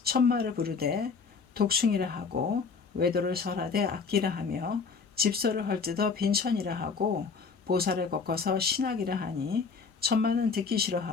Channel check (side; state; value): right; quieter; 5.1 dB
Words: 천마를 부르되 독충이라 하고 외도를 설하되 악기라 하며 집소를 헐뜯어 빈천이라 하고 보살을 꺾어서 신학이라 하니 천마는 듣기